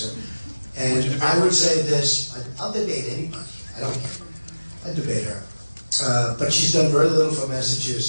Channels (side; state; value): both; inverted; correlation -0.99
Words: her. And I would say this, I'll debate anybody. I don't care. I debate her. But she's done very little for